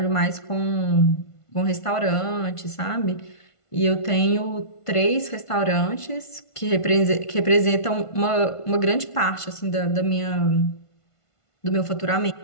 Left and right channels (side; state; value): right; late; 1.5 ms